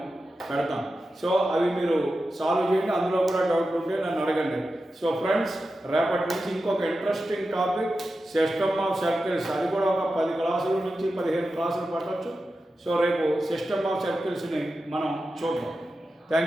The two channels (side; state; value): both; normal; correlation 0.91